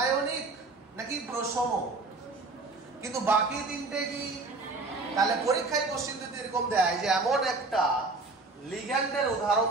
নাকি প্রশম? কিন্তু বাকি তিনটে কি? তাহলে পরীক্ষায় কোশ্চেন যদি এরকম দেয় যে এমন একটা লিগ্যান্ডের উদাহরণ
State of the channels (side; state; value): left; quieter; 3.6 dB